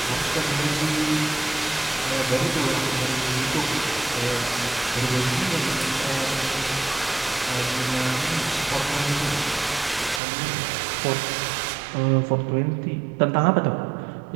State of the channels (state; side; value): drops out; left; at 10.2 s